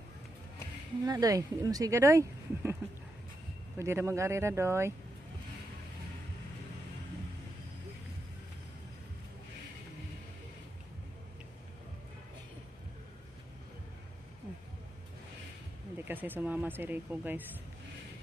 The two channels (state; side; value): normal; both; correlation 0.85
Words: Wala doy, hindi mo siga doy. Pwede na mag-arira doy. Hindi kasi sumama si Rico guys.